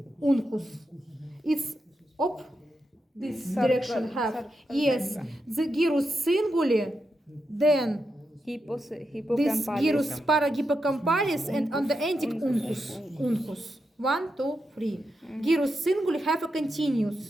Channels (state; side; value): normal; both; correlation 0.86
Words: It's this direction have. Yes, the gyrus singuli, then this gyrus parahippocampalis, and on the ending uncus. 1, 2, 3. Gyrus singuli have a